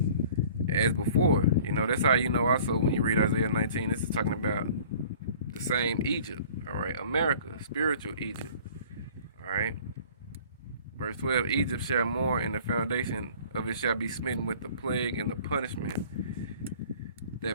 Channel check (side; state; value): both; inverted; correlation -0.49